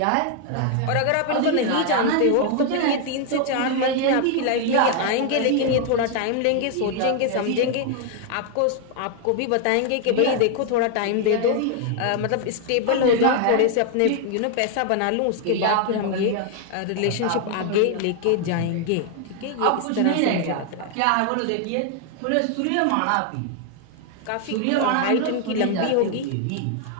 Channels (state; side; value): different; both; correlation 0.00